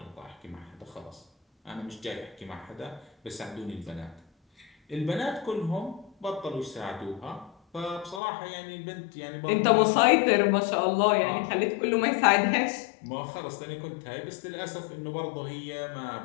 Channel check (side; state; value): right; drops out; at 8.2 s